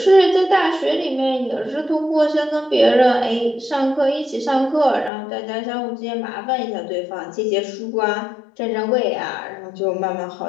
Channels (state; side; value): drops out; right; at 5.1 s